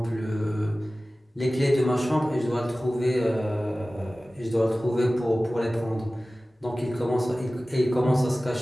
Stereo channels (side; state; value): both; normal; correlation 0.97